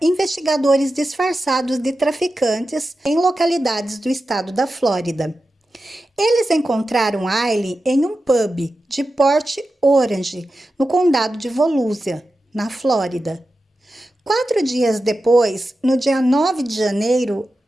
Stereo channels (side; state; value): both; normal; correlation 0.92